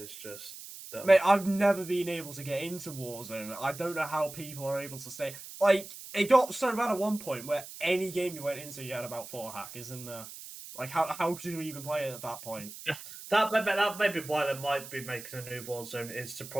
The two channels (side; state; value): right; noise; hiss, 13 dB below the sound